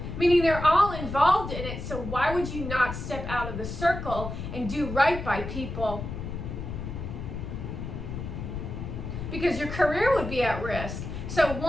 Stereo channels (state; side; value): noise; left; rumble, 6 dB below the sound